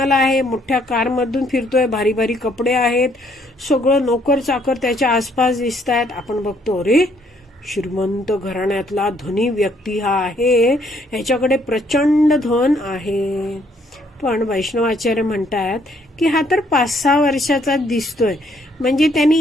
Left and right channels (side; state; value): both; normal; correlation 0.67